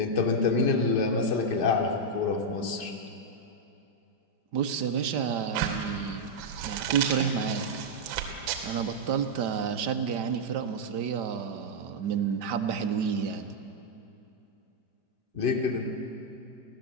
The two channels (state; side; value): late; left; 5.1 ms